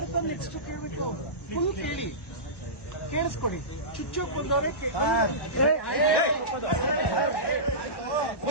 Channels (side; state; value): right; late; 1.1 ms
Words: ನೆಕ್ಸ್ಟ್ ಕೇಳ್ಬಿಟ್ಟು ಫುಲ್ ಕೇಳಿ ಕೇಳಿಸ್ಕೊಡಿ. ಚುಚ್ಚೋಕ್ ಬಂದವರೇ